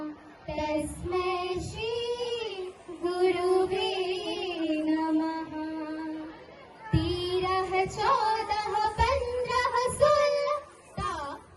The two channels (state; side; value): identical; both; correlation 1.00